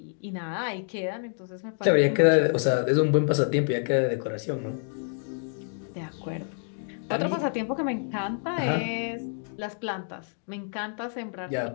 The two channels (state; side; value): silent; right; 58 dB below the other